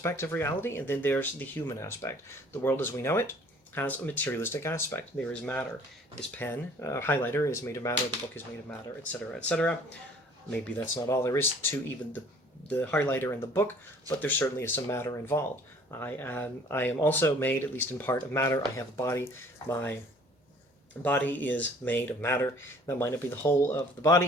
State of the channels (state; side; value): normal; both; correlation 0.54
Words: of reality, and then there's the human aspect. The world as we know it has a materialistic aspect. There is matter. This pen, highlighter is made of matter, the book is made of matter, etc., etc. Maybe that's not all there is to even the highlighter and the book, but there certainly is some matter involved. I am also made, at least in part, of matter. I have a body. My body is made of matter. That might not be the whole of the